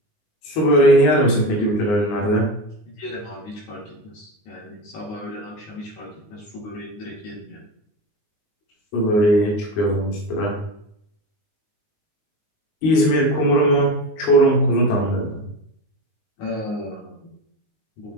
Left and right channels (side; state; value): right; late; 19 ms